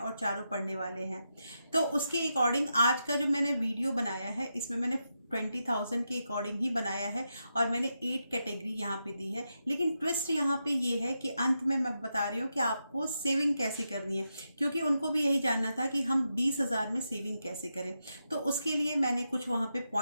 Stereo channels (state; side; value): inverted; both; correlation -0.86